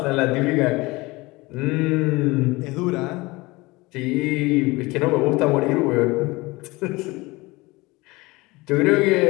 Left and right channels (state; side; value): quieter; right; 22.5 dB